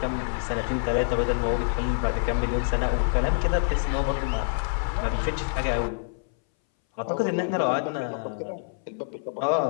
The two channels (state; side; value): silent; right; 61 dB below the other